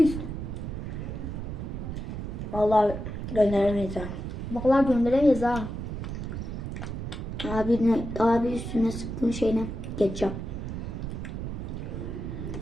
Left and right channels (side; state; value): right; noise; rumble, 5 dB below the sound